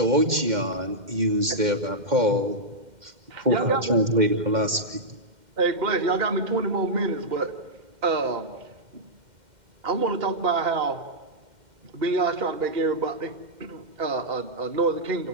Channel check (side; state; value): left; late; 2.1 ms